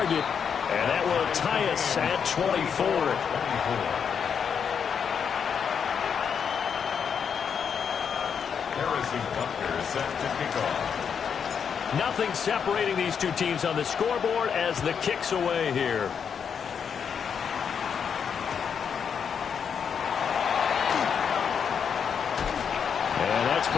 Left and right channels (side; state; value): right; quieter; 7.1 dB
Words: And that will tie us at 24. Harrison Butker set to kick off. Nothing separating these two teams on the scoreboard as the kick's away here. And that's